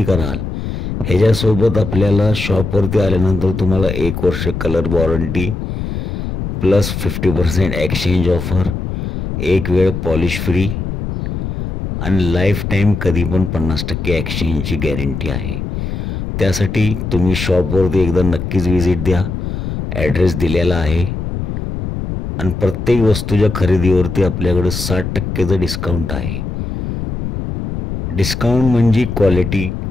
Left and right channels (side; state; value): left; noise; rumble, 4 dB below the sound